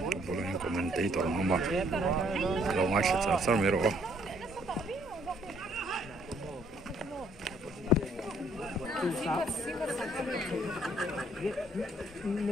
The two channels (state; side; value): normal; both; correlation 0.65